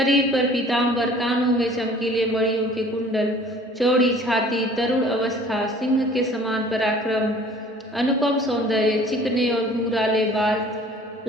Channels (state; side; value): normal; both; correlation 0.51